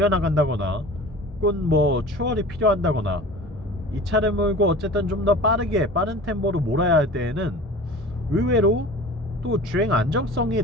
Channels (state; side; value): normal; both; correlation 0.39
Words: 혹은 뭐 추월이 필요한다거나 이 차를 몰고 어쨌든 좀 더 빠른 템포로 몰아야 할 때에는 의외로 또 주행 안정성이